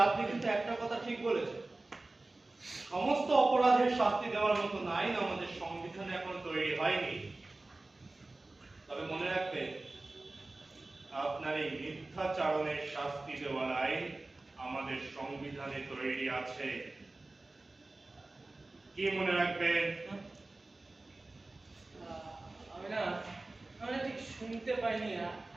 আপনি কিন্তু একটা কথা ঠিক বলেছেন, সমস্ত অপরাধের শাস্তি দেওয়ার মতো আইন আমাদের সংবিধানে এখন তৈরি হয়নি। তবে মনে রাখবেন, আপনার এই মিথ্যাচারণের শাস্তি দেওয়ার আইন আমাদের সংবিধানে তৈরি আছে। কি মনে রাখবেন? শুনতে পাইনি,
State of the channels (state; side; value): quieter; left; 3.0 dB